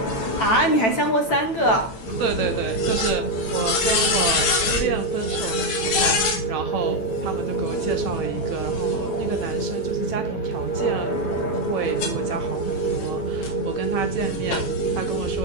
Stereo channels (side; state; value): right; late; 9.0 ms